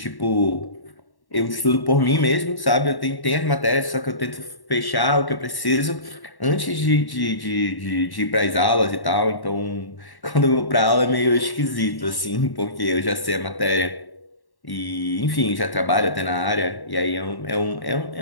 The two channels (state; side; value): late; right; 1.1 ms